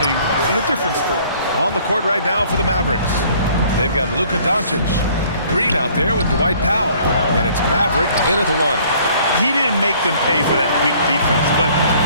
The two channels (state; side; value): inverted; both; correlation -0.57